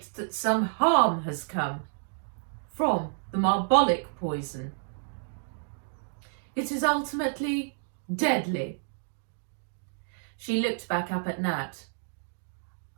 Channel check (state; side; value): silent; left; digital silence